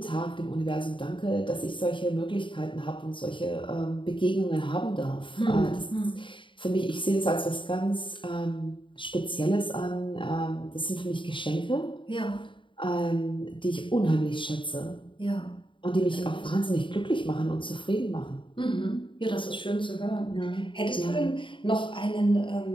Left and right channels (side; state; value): right; late; 0.24 ms